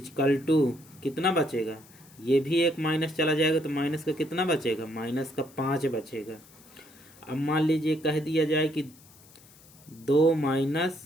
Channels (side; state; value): left; noise; hiss, 25 dB below the sound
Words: कितना बचेगा, ये भी एक माइनस चला जाएगा, तो माइनस का कितना बचेगा, -5 बचेगा। अब मान लीजिए कह दिया जाए कि 2 -